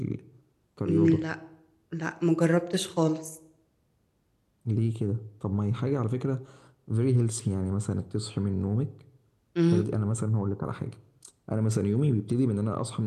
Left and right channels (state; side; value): identical; both; correlation 1.00